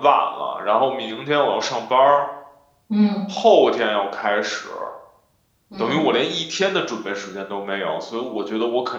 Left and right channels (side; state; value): both; identical; correlation 1.00